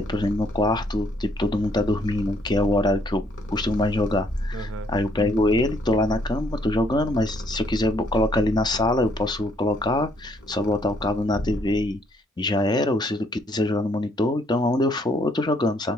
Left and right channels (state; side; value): normal; both; correlation 0.68